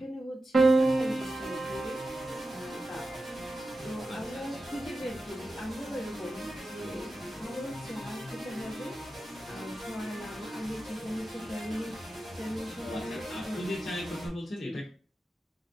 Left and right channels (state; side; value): normal; both; correlation 0.92